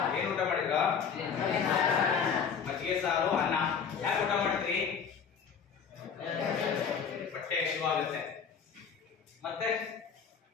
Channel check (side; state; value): right; quieter; 6.6 dB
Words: ಏನ್ ಊಟ ಮಾಡಿದ್ರ? ಮಜ್ಜಿಗೆ ಸಾರು ಅನ್ನ. ಯಾಕೆ ಊಟ ಮಾಡ್ತೀರಿ? ಹೊಟ್ಟೆ ಹಸಿವಾಗುತ್ತೆ. ಮತ್ತೆ